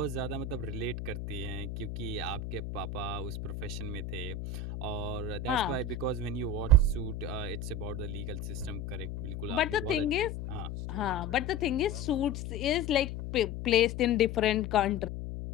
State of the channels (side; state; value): left; noise; hum, 6 dB below the sound